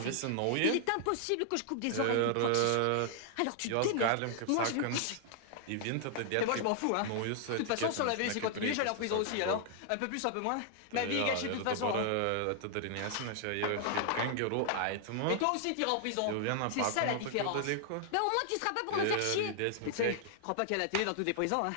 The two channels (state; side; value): different; both; correlation 0.00